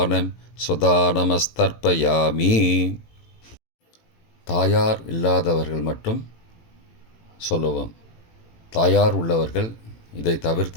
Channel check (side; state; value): right; late; 18 ms